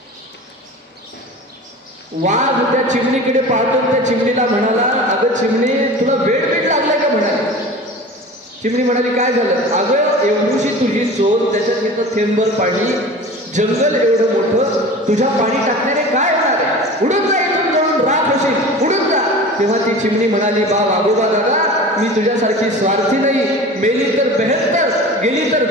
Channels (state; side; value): normal; both; correlation 0.37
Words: वाघ त्या चिमणीकडे पाहतो. त्या चिमणीला म्हणाला, अगं चिमणी, तुला वेळ लागलाय का? म्हणाली. चिमणी म्हणाली, काय झालं? अगं, एवढीशी तुझी चोच, त्याच्यात इथं थेंबर पाणी, जंगल एवढं मोठं, तुझ्या पाणी टाकण्याने काय होणार आहे? उडून जा इथून, जळून राख होशील, उडून जा. तेव्हा ती चिमणी म्हणाली, वाघोबा दादा, मी तुझ्यासारखी स्वार्थी नाही. मेली तर बेहत्तर, गेली तर